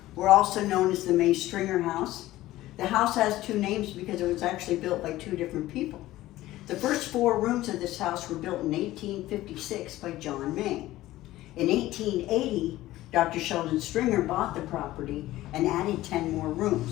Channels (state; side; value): quieter; right; 16.0 dB